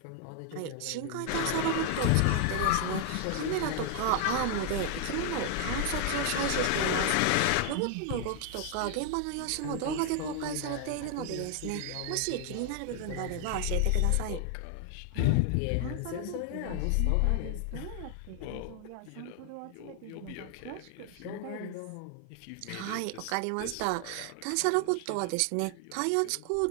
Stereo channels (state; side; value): different; both; correlation 0.00